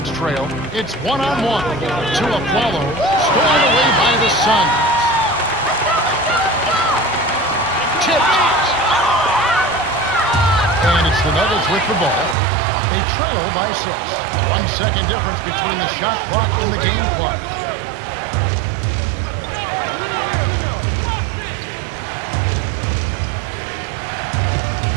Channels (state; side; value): drops out; left; at 12.4 s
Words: trail. It's one-on-one. To Afflalo. Stolen away by the Suns. Tipped. And it's the Nuggets with the ball. They trail by 6. 1 second difference between the shot clock and the game clock.